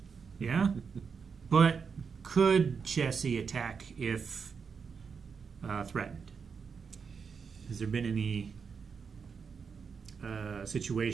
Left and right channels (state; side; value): quieter; left; 5.9 dB